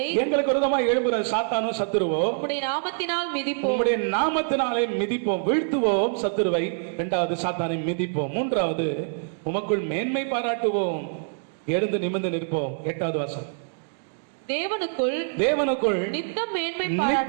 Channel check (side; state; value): left; silent; digital silence